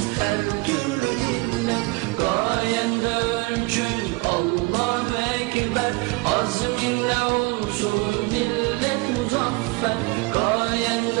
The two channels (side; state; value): left; quieter; 24.5 dB